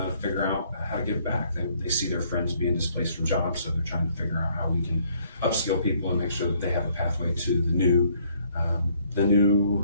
to figure out how to give back. They see their friends being displaced from jobs, so they're trying to figure out how we can upskill people and make sure that they have a pathway to the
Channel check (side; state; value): both; inverted; correlation -0.65